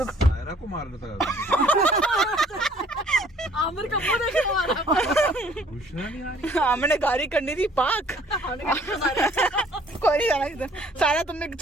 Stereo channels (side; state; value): both; normal; correlation 0.58